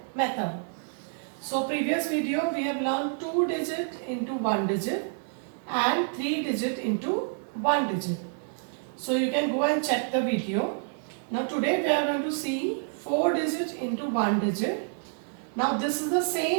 method. So previous video we have learned 2 digit into 1 digit and 3 digit into 1 digit. So you can go and check the video. Now today we are going to see 4 digit into 1 digit. Now this is the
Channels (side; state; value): left; silent; 59 dB below the other